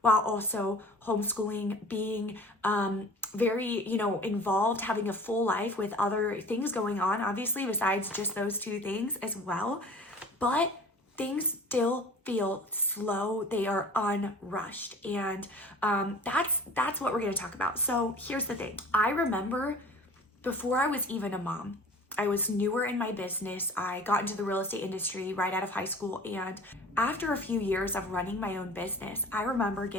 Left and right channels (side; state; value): both; normal; correlation 0.44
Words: while also homeschooling, being very, involved, having a full life with other things going on, obviously, besides just those two things as well. But things still feel slow. They are unrushed. And that's what we're going to talk about. So here's the thing. I remember before I was even a mom, I was newer in my business. I got into the real estate industry right out of high school. And after a few years of running my own business, I remember